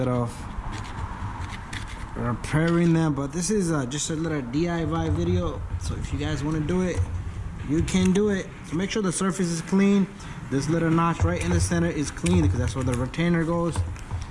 of repairing them, but this is just a little DIY video, so if you guys want to do it, you can do it. So make sure the surface is clean. This little notch right in the center is clean because that's where the retainer goes.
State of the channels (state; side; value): identical; both; correlation 1.00